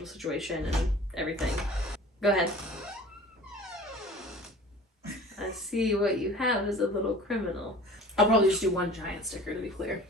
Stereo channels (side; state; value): both; normal; correlation 0.44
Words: situation and everything. Go ahead. I see what you have is a little criminal. I'll probably just do one giant sticker, to be clear,